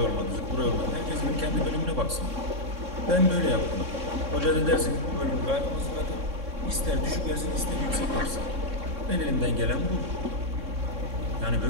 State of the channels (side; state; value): left; late; 3.6 ms